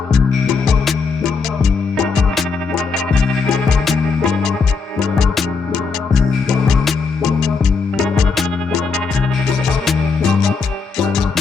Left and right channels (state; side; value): quieter; right; 4.9 dB